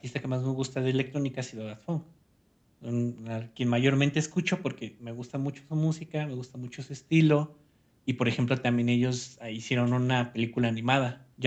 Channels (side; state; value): both; identical; correlation 1.00